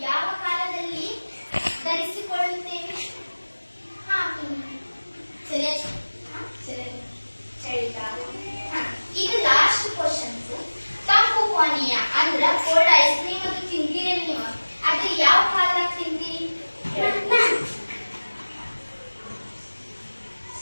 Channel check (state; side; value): inverted; both; correlation -1.00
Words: ಯಾವ ಕಾಲದಲ್ಲಿ ಧರಿಸಿಕೊಳ್ಳುತ್ತೇವೆ? ಚಳಿಗಾಲ. ಇದು ಲಾಸ್ಟ್ ಕ್ವಶನ್ಸ್. ತಂಪು ಪಾನೀಯ ಅಂದ್ರ ಕೋಲ್ಡ್ ಐಸ್ ಕ್ರೀಮ್ ಅದು ತಿಂತೀರಿ ನೀವು. ಅದು ಯಾವ ಕಾಲದಾಗ ತಿಂತೀರಿ?